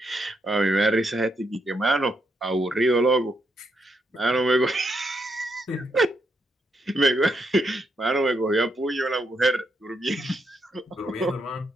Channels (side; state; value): both; normal; correlation 0.79